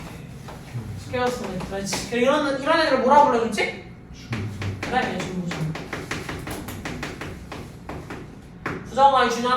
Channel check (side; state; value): both; identical; correlation 1.00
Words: 스퀘어스는 그렇지. 이런 애들을 뭐라 불러줬지? 그래, 중부중. 부정어가